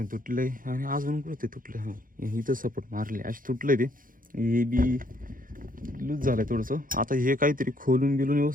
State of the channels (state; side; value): late; left; 0.40 ms